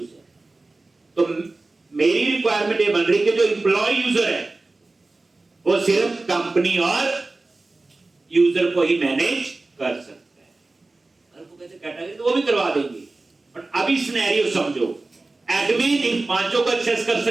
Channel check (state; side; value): quieter; left; 3.2 dB